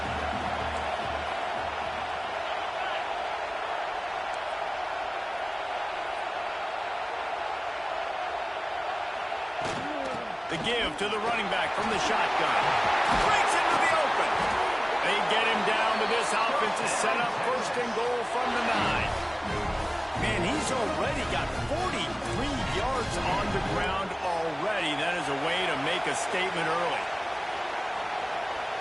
The give to the running back from the shotgun. Breaks into the open. They get him down, but this offense is set up 1st and goal from the 9. Man, he's already got 43 yards on the ground already. That is a way to make a statement early.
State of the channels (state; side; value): identical; both; correlation 1.00